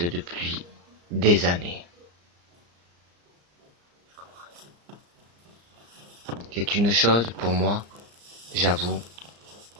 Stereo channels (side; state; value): left; late; 34 ms